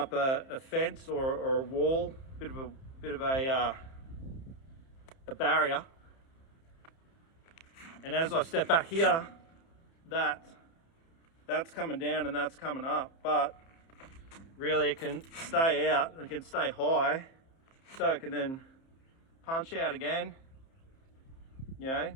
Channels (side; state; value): right; late; 30 ms